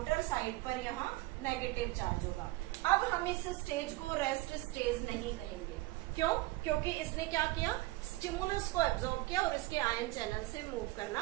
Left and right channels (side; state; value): left; quieter; 19.7 dB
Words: साइड पर यहाँ नेगेटिव चार्ज होगा। अब हम इस स्टेज को रेस्ट स्टेज नहीं कहेंगे, क्यों? क्योंकि इसने क्या किया, स्टिमुलस को एब्जॉर्ब किया और इसके आयन चैनल से मूव